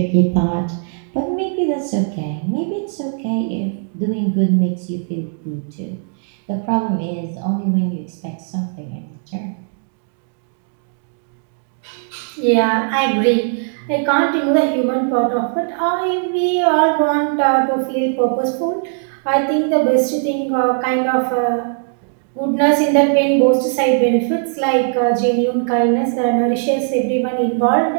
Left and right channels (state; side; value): silent; left; 66 dB below the other